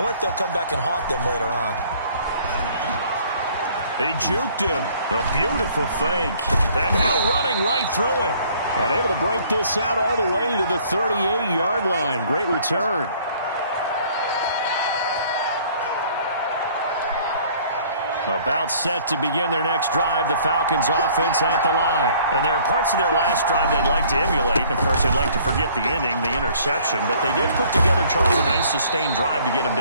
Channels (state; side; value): inverted; both; correlation -0.57